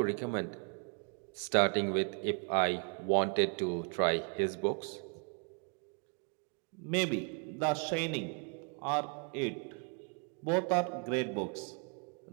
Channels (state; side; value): quieter; left; 38.6 dB